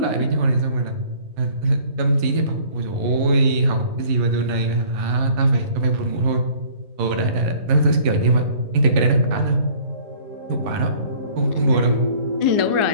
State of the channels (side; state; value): left; late; 11 ms